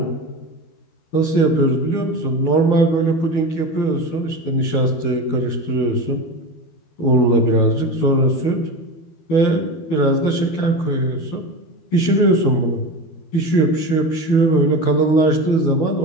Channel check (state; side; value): late; right; 12 ms